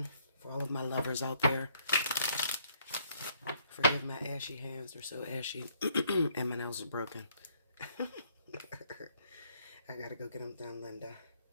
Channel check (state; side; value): inverted; both; correlation -0.68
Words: For all of my lovers out there, forgive my ashy hands. They're so ashy, and my nails are broken. I gotta go get them done, Linda.